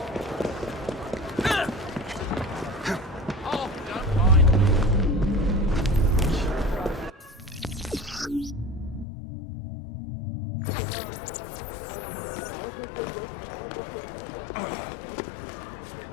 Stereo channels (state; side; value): drops out; right; at 9.1 s